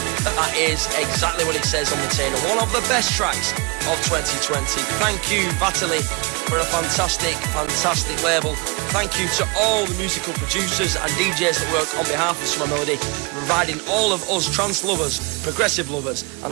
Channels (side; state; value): left; quieter; 28.8 dB